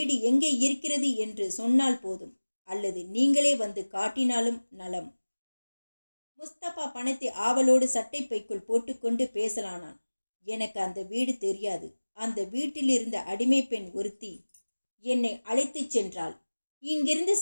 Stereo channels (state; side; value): inverted; both; correlation -1.00